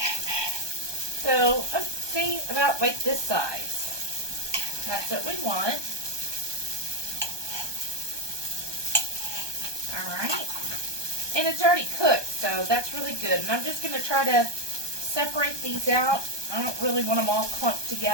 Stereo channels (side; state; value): left; late; 1.2 ms